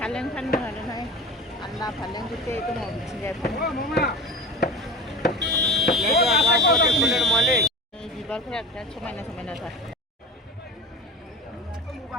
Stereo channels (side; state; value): both; normal; correlation 0.34